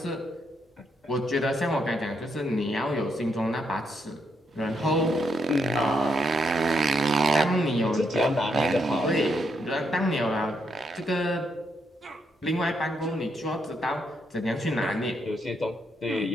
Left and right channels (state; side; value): normal; both; correlation 0.78